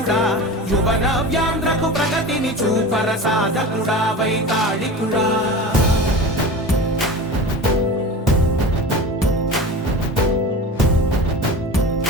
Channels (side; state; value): both; normal; correlation 0.32